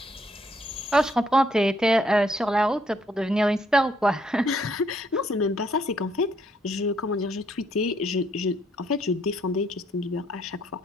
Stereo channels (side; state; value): both; normal; correlation 0.70